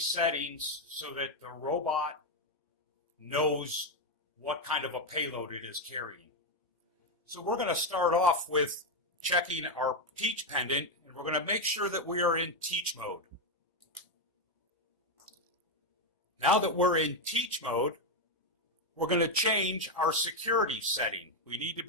settings so that the robot knows what kind of a payload it is carrying. So we're going to start off with checking our teach pendant, and we're going to make sure that we are in teach mode. Now that we're in teach mode, we're going to change our security setting. We need to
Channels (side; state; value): both; normal; correlation 0.05